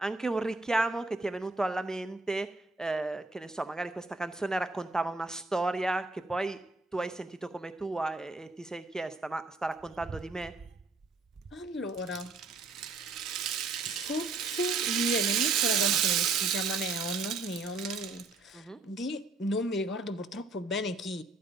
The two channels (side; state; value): left; quieter; 3.4 dB